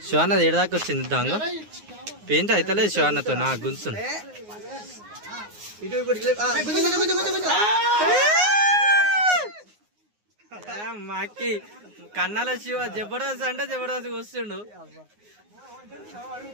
శివన్నది ఏడదాకా వచ్చింది దాంగ పెయింట్ అయితే లేదు శివన్నతో. నా గుంచును మాకి కన్నాల శివ జబర్దస్త్ అంటే జబర్దస్త్ వస్తుండు.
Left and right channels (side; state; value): left; late; 9.6 ms